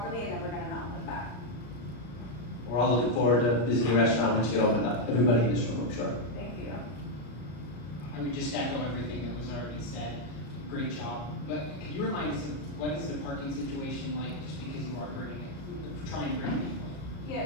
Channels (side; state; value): right; late; 33 ms